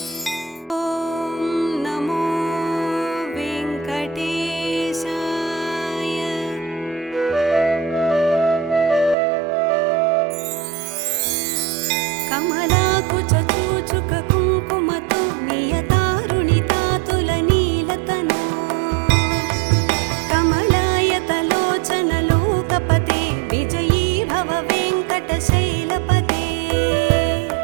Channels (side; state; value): left; drops out; at 9.2 s